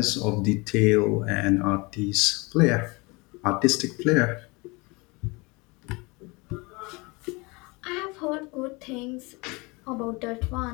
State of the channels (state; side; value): quieter; right; 26.4 dB